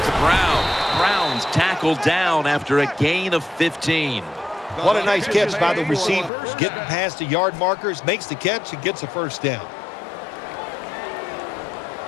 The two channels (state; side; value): drops out; right; at 6.3 s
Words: to Brown. Brown's tackled down after a gain of 15. What a nice catch by the receivers. Getting past the yard markers, makes the catch, and gets a first down.